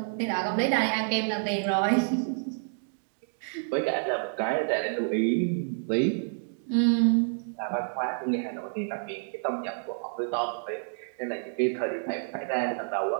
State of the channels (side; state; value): left; silent; digital silence